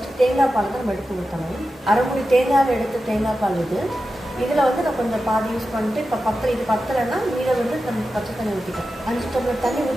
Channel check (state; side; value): normal; both; correlation 0.92